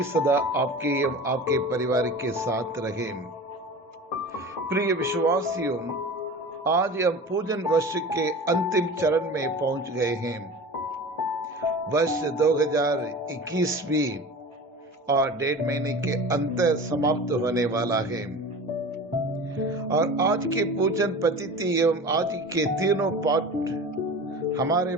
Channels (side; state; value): both; normal; correlation 0.35